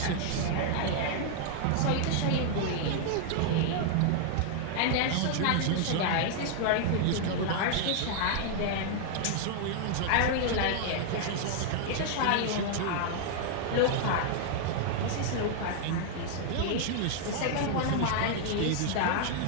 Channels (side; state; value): both; different; correlation 0.00